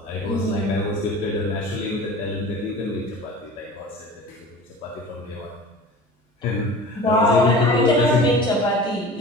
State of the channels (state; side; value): normal; both; correlation 0.39